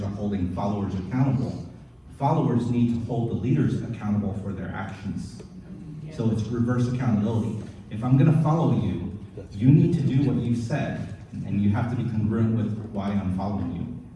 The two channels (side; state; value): both; identical; correlation 1.00